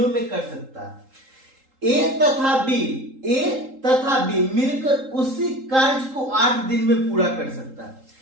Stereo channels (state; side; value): late; left; 3.8 ms